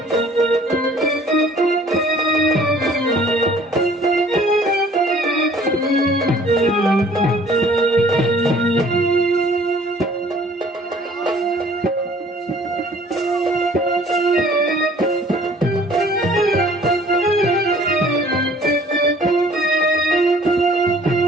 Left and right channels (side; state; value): both; normal; correlation 0.54